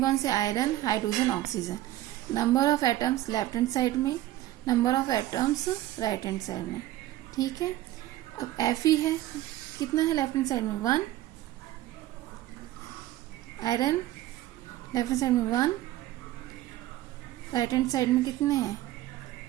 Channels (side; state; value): left; quieter; 15.0 dB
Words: कौन से, iron, hydrogen, oxygen. Number of atoms left hand side में, number of atoms right hand side में। ठीक है, अब Fe है कितना है लेफ्ट हैंड साइड में 1, आयरन लेफ्ट हैंड साइड में 1, राइट हैंड साइड में कितने हैं